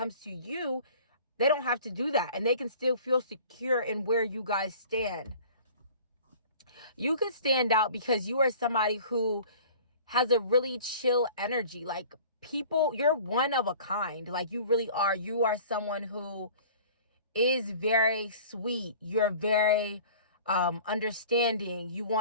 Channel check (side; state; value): both; inverted; correlation -0.46